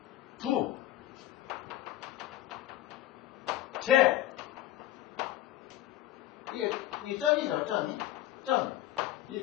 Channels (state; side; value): quieter; right; 13.9 dB